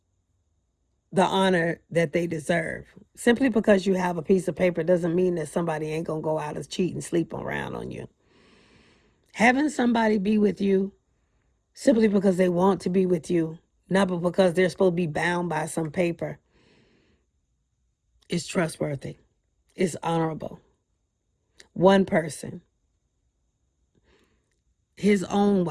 the honor that they deserve. Simply because you have a piece of paper doesn't mean that somebody ain't going to go out and cheat and sleep around on you. Having somebody be with you simply because they want to be with you, not because they're supposed to be bound by some paper, is trustworthy. It's honorable. One person, his own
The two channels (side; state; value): both; identical; correlation 1.00